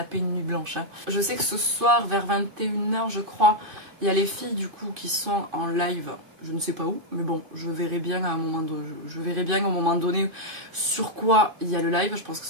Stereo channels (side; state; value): left; late; 2.5 ms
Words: une nuit blanche. Hein. Je sais que ce soir vers 21 h je crois, il y a les filles du coup qui sont en live. Je ne sais pas où, mais bon, je verrai bien à un moment donné, au moment donné sur quoi il y a le live. Je pense que